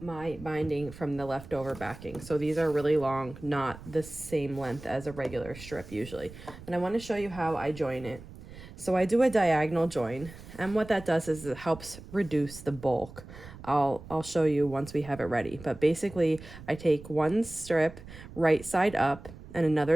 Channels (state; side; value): noise; right; rumble, 16 dB below the sound